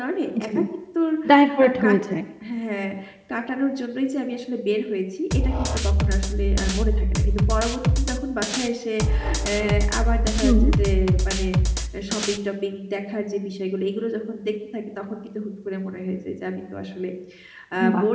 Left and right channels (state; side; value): identical; both; correlation 1.00